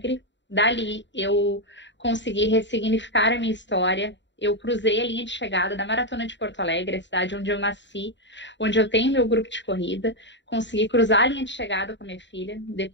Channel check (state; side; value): late; right; 0.52 ms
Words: Dali, eu consegui ressignificar a minha história. Eu cruzei a linha de chegada da Maratona de Porto Alegre, a cidade onde eu nasci, onde eu tenho meu grupo de corrida. Consegui cruzar a linha de chegada com a minha filha.